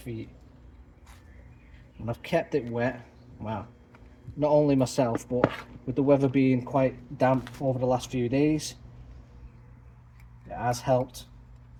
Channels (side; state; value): both; identical; correlation 1.00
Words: feet, and I've kept it wet. Wow, not only myself, but with the weather being quite damp over the last few days, it has helped